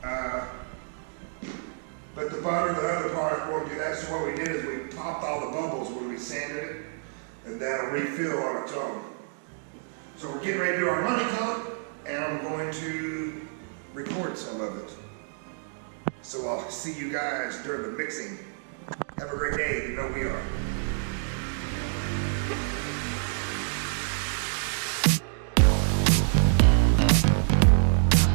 but the other part won't do that. So what we did is we popped all the bubbles when we sanded it, and that'll refill on its own. So we're getting ready to do our money coat, and I'm going to record some of it. So I'll see you guys during the mixing. Have a great day, you know we are.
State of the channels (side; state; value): left; silent; digital silence